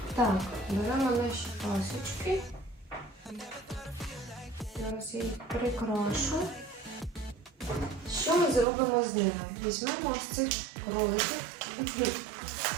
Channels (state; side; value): drops out; left; at 8.7 s